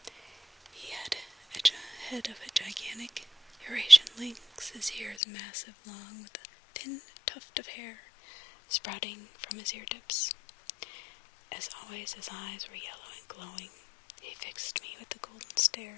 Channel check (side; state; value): right; drops out; at 5.2 s